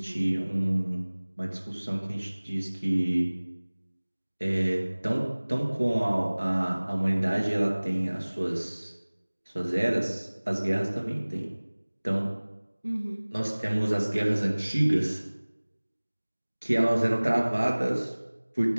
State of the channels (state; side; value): inverted; both; correlation -1.00